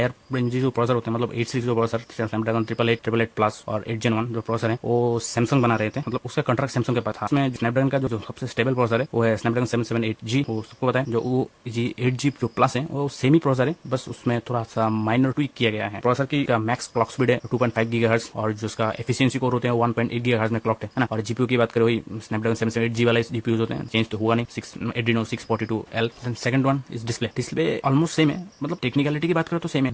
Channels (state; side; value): identical; both; correlation 1.00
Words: रेंज जो प्रोसेसर होते हैं, मतलब 8 सीरीज जो प्रोसेसर स्नैपड्रैगन 888 प्लस और 8 Gen 1 जो प्रोसेसर है वो सैमसंग बना रहे थे, मतलब उसका कॉन्ट्रैक्ट सैमसंग के पास था। उसमें स्नैपड्रैगन का जो सबसे स्टेबल प्रोसेसर है वो है स्नैपड्रैगन 778G, वो सबको पता है। जो वो जी 8G जो प्लस है वो सेमी प्रोसेसर है, बस उसमें थोड़ा सा माइनर ट्वीक किया गया है। प्रोसेसर की मैक्स क्लॉक स्पीड है 2.5 GHz और जो उसका एफिशिएंसी कोर होते हैं 1.8 GHz में क्लॉक है ना। और जीपीयू की बात करें वही स्नैपड्रैगन 778G वाले जीपीयू होते हैं, चेंज तो हुआ नहीं, Adreno 642L। Second one is display. Display almost same है, मतलब टेक्निकलिटी की बात करें तो सेम है।